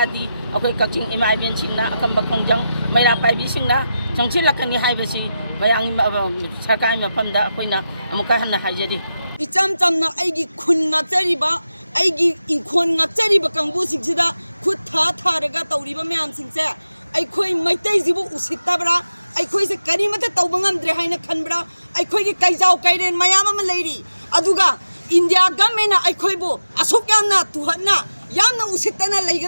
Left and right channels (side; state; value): both; inverted; correlation -0.91